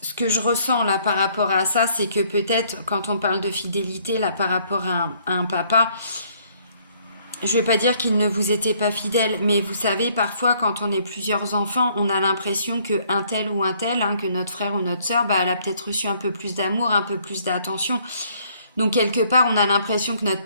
ce que je ressens là par rapport à ça, c'est que peut-être quand on parle de fidélité là par rapport à un papa, je ne vais pas dire qu'il ne vous était pas fidèle, mais vous savez, parfois quand on est plusieurs enfants, on a l'impression qu'un tel ou un tel, hein, que notre frère ou notre sœur, bah, elle a peut-être reçu un peu plus d'amour, un peu plus d'attention. Donc quelque part, on a l'impression que notre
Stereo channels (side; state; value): both; inverted; correlation -0.64